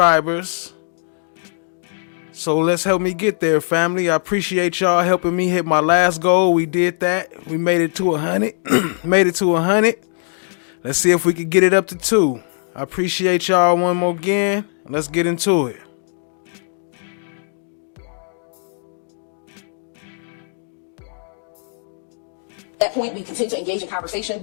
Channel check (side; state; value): right; silent; 66 dB below the other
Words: So let's help me get there, family. I appreciate y'all helping me hit my last goal. We did that. We made it to 100. Made it to 100. Let's see if we can get it up to 2. I appreciate y'all one more again. Let's get into it. At that point, we continued to engage in conversation.